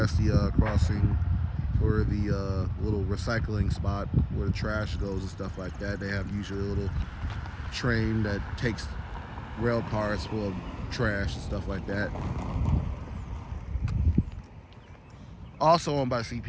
the crossing for the little recycling spot where the trash goes and stuff like that. They have usually a little train that takes rail cars full of trash and stuff like that. Also owned by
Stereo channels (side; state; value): both; identical; correlation 1.00